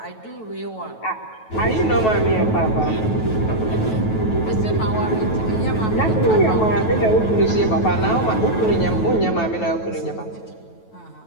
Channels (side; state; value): right; late; 9.2 ms